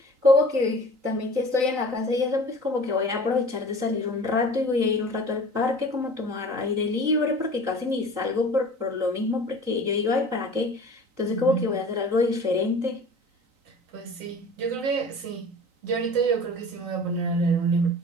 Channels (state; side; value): late; left; 3.9 ms